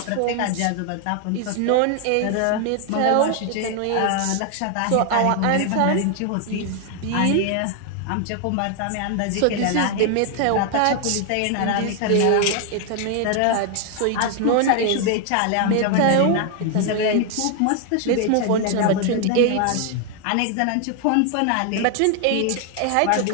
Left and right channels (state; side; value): different; both; correlation 0.00